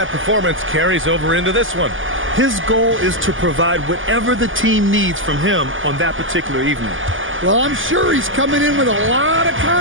performance carries over into this one. His goal is to provide whatever the team needs from him on that particular evening. Well, I'm sure he's coming in with a lot of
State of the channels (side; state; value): left; late; 0.58 ms